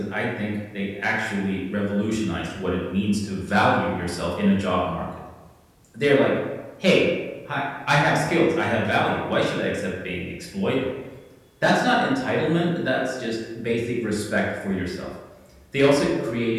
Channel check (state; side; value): identical; both; correlation 1.00